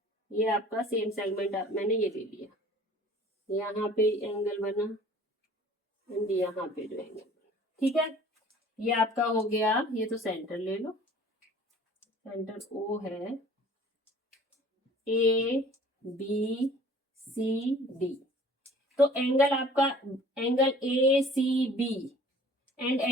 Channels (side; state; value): both; normal; correlation 0.49